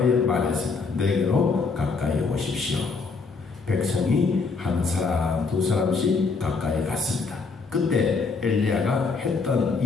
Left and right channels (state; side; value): quieter; right; 4.5 dB